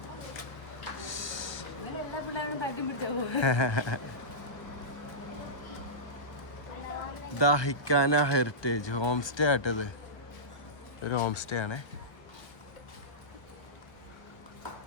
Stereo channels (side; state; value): right; late; 1.2 ms